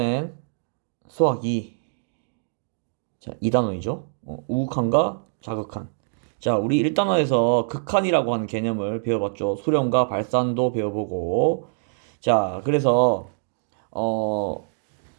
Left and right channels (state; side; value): silent; left; digital silence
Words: 수학 2. 자, 2단원이죠. 우극한과 자극한. 자, 우리 1단원에서 극한이라고 하는 개념을 배워봤죠. 수렴과 발산도 배워보고. 자, 그래서 어,